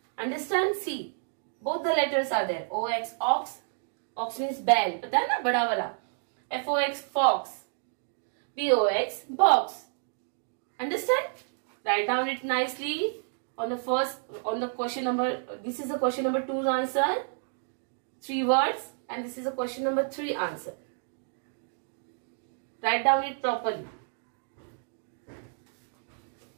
Understand? See, both the letters are there. OX, ox. Ox means bell. पता है ना, बड़ा वाला. FOX, fox. BOX, box. Understand? Write down it nicely on the question number. This is the question number 2's answer. 3 words, and this is the question number 3 answer. Write down it properly.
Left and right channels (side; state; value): left; silent; digital silence